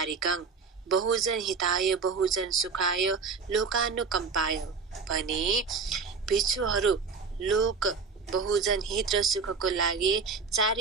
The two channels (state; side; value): quieter; left; 5.0 dB